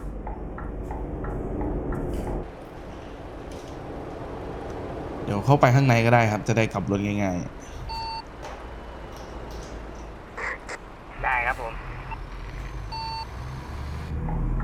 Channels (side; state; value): both; identical; correlation 1.00